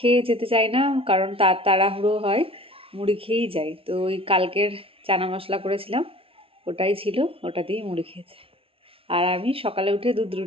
যেতে চাই না, কারণ তাড়াহুড়ো হয়, মুড়ি খেয়েই যাই। তো ওই কালকের চানা মশলা করেছিলাম, ওটাই ছিল, ওটা দিয়েই মুড়ি খেয়েছে। আর আমি সকালে উঠে দুধ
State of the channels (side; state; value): left; late; 0.26 ms